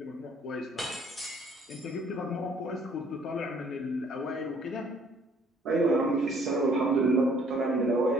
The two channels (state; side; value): normal; both; correlation 0.60